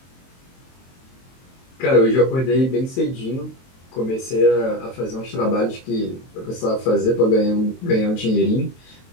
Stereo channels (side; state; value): right; late; 23 ms